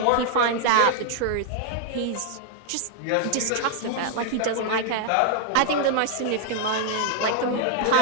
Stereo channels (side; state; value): both; different; correlation 0.00